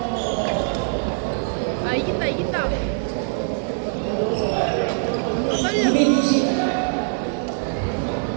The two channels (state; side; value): silent; left; digital silence